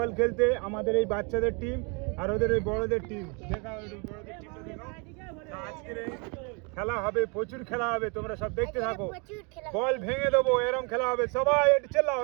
খেলতে। আমাদের এই বাচ্চাদের টিম আর ওদের ওই বড়দের টিম। দেখাও বড়দের টিমটা দেখাও। আজকের এই খেলা হবে, প্রচুর খেলা হবে, তোমরা সব দেখতে থাকো। বল ভেঙে দেবো, এরকম খেলা হবে। সবাই একটু চেল্লাও।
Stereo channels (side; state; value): left; quieter; 32.6 dB